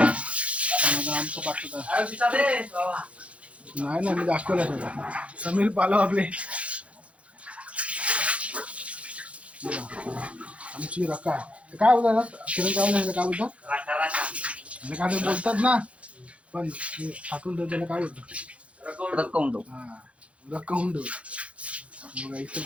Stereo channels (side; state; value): left; late; 0.063 ms